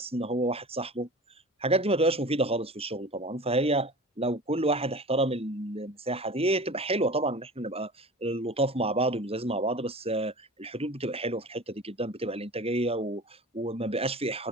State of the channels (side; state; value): both; normal; correlation 0.37